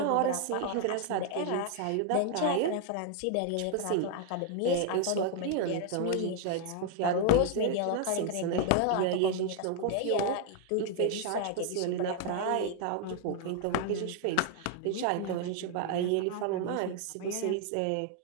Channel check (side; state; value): both; different; correlation 0.00